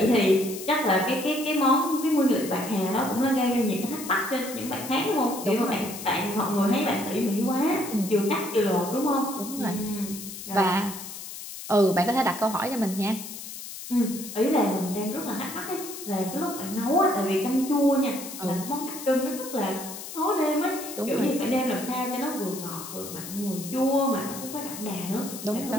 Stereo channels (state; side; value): noise; left; hiss, 10 dB below the sound